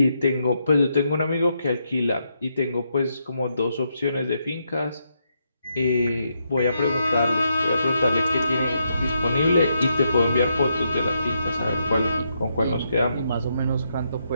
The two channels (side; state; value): both; inverted; correlation -0.80